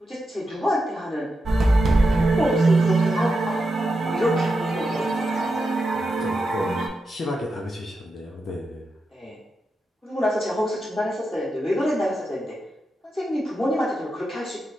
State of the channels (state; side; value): normal; both; correlation 0.88